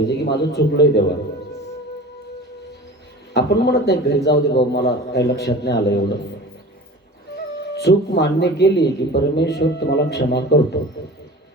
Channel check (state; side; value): normal; both; correlation 0.38